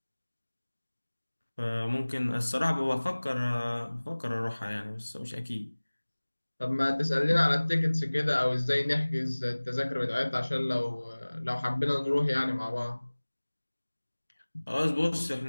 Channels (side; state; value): both; inverted; correlation -1.00